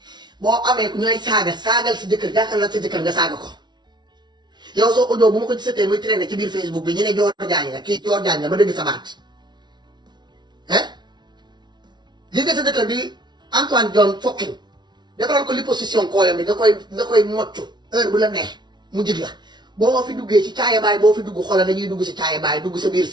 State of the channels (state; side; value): late; left; 0.21 ms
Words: boo amee ku ñooy saagal si jëkkër jàkkaarloo sa jëkkër nga saaga ko yow soo audio bu ma ko gisatee muy traîner ci biir Facebook bi ñu ne Dior Diagne la kii Dior Diagne la ma dëgg sa baat gis nga sa jëkkër bi Antoine John Fokkin defaral ko liposuction kooyam bi nga koy moccu heure bu la neex mu jig la boo fi duggee ci caaya baay boo fi dugg xoolal dañuy dugg si caaya baay dugg sa biir